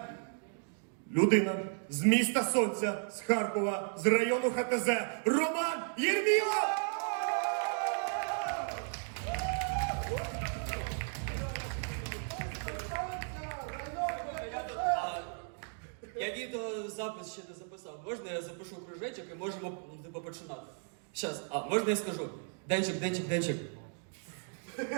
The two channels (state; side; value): silent; left; 55 dB below the other